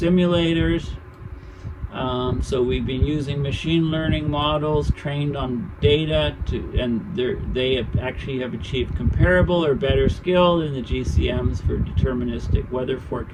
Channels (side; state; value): both; identical; correlation 1.00